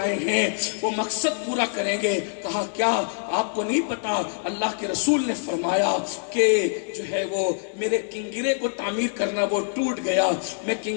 ہیں وہ مقصد پورا کریں گے۔ کہا کیا آپ کو نہیں پتا، اللہ کے رسول نے فرمایا کہ جو ہے وہ میرے کنگرے کو تعمیر کرنا، وہ ٹوٹ گیا، میں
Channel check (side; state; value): right; silent; digital silence